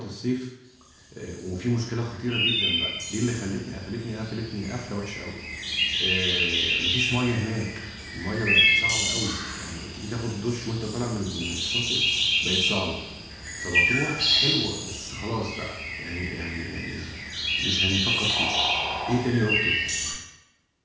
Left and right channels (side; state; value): both; identical; correlation 1.00